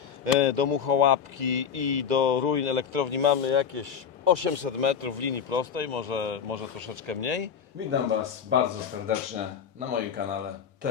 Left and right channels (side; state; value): right; quieter; 7.3 dB